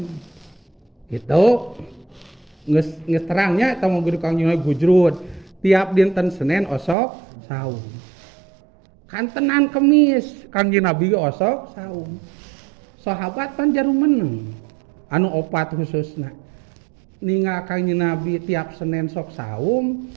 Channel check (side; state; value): left; drops out; at 7.0 s